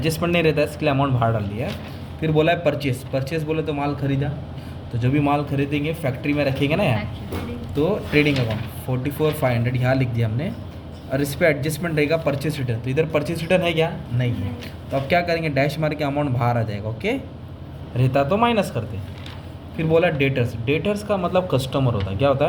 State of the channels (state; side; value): identical; both; correlation 1.00